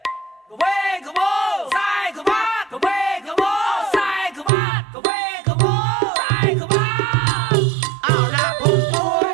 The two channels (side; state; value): left; drops out; at 4.5 s